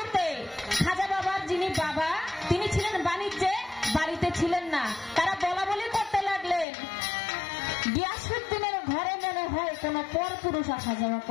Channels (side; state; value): right; drops out; at 6.7 s